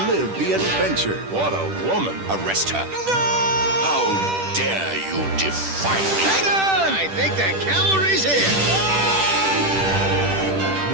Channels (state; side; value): late; left; 10 ms